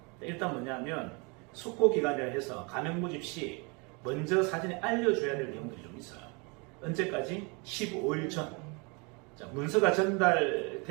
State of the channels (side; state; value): left; quieter; 30.7 dB